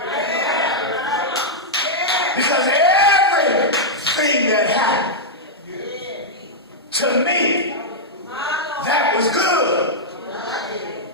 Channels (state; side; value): normal; both; correlation -0.06